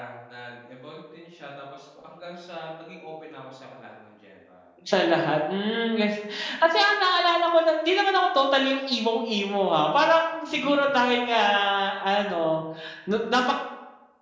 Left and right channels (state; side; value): identical; both; correlation 1.00